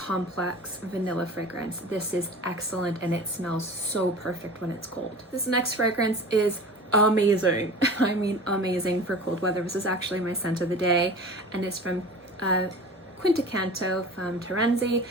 vanilla fragrance. This is excellent, and it smells so perfect when it's cold. This next fragrance is amazing. I mean amazing for cold weather. This is actually my scent of the day, and it's from Canto from Terenzi.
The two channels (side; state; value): both; normal; correlation 0.38